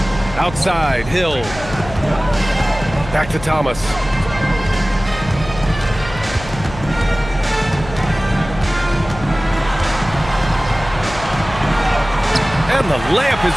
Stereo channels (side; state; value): left; noise; hum, 12 dB below the sound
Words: Outside, Hill. Back to Thomas. And the layup is